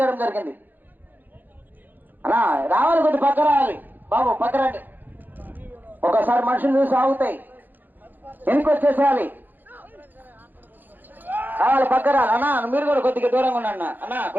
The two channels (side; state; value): left; late; 0.088 ms